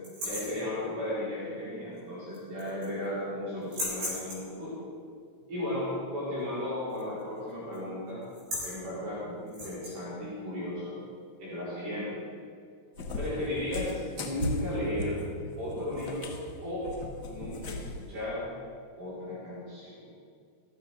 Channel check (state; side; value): late; left; 15 ms